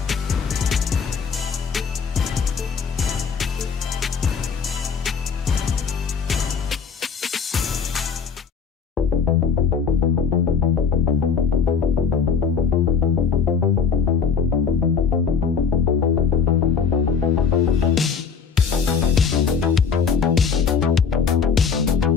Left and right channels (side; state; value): right; quieter; 6.2 dB